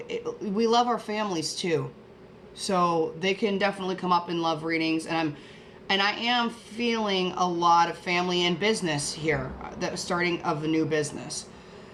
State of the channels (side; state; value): both; identical; correlation 1.00